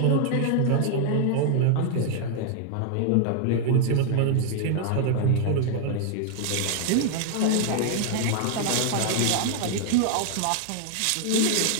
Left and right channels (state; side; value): different; both; correlation 0.00